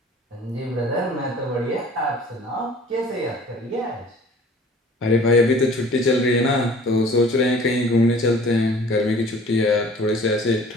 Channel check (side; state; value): both; normal; correlation 0.49